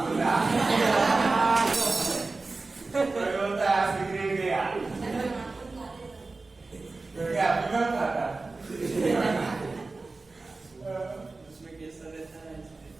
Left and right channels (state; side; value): quieter; left; 3.6 dB